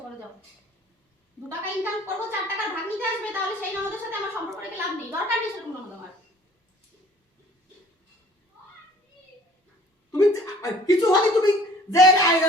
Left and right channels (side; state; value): both; normal; correlation 0.53